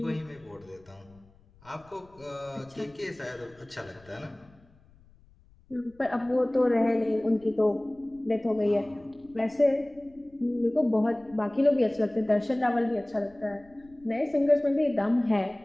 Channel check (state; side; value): noise; left; rumble, 28 dB below the sound